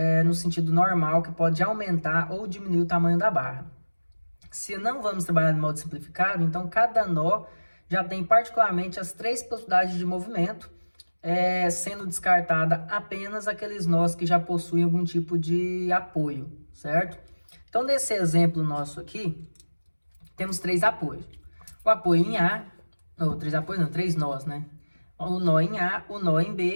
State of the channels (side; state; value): both; inverted; correlation -1.00